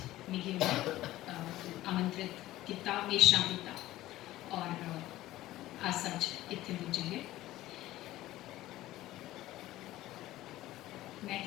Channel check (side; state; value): right; quieter; 15.8 dB